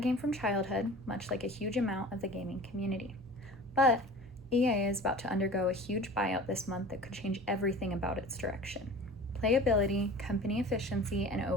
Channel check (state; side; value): normal; both; correlation 0.40